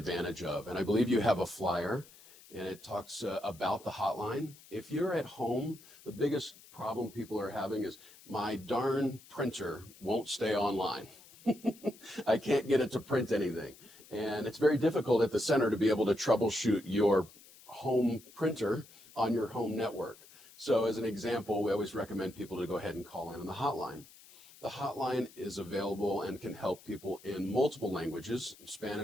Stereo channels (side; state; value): left; noise; hiss, 22 dB below the sound